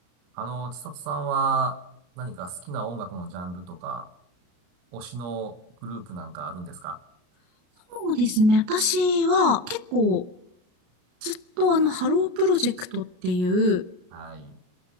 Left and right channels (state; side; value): late; left; 33 ms